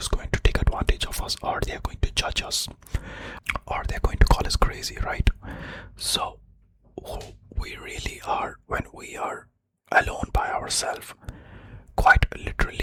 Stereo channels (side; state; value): both; identical; correlation 1.00